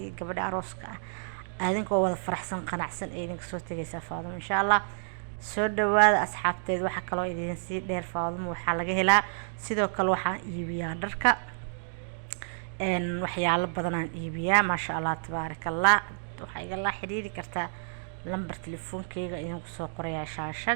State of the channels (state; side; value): silent; left; digital silence